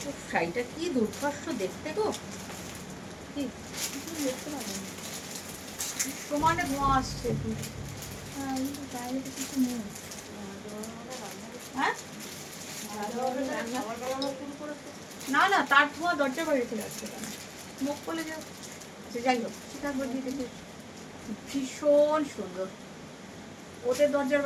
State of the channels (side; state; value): both; identical; correlation 1.00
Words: শাড়িটা কি দুর্ধর্ষ দেখতে গো, কি দেখতে পাবেন সমানে ধোঁয়া আসছে। হ্যাঁ না না, তার ধোঁয়া দরজা বাইরে চলে আসছে, মুখ বলে যাও। যাই হোক, ভীষণ সুন্দর, ওদের দরজার